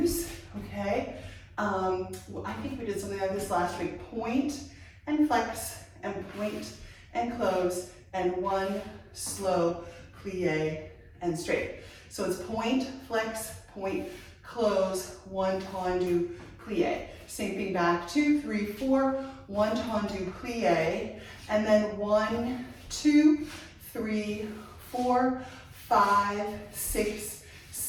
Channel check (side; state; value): both; identical; correlation 1.00